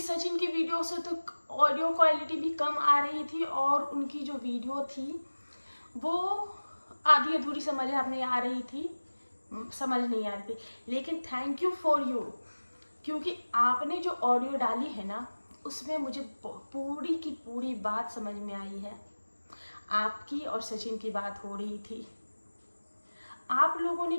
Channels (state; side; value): inverted; both; correlation -1.00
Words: की वीडियो से तो ऑडियो क्वालिटी भी कम आ रही थी और उनकी जो वीडियो थी वो आधी अधूरी समझ में आ रही थी, समझ नहीं आ रही थी। लेकिन थैंक यू फॉर यू, क्योंकि आपने जो ऑडियो डाली है ना, उसमें मुझे पूरी की पूरी बात समझ में आई है। आपकी और सचिन की बात हो रही थी। आप लोगों ने